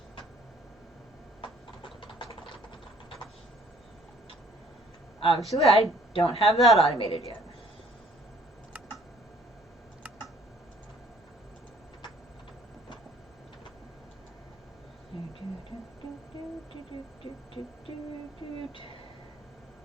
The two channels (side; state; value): both; normal; correlation 0.59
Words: Obviously, I don't have that automated yet.